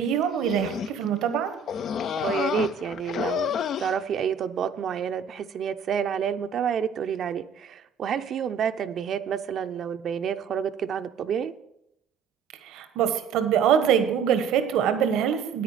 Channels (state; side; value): quieter; left; 5.9 dB